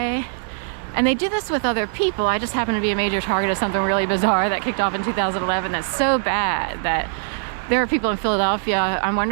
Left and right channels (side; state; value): left; silent; digital silence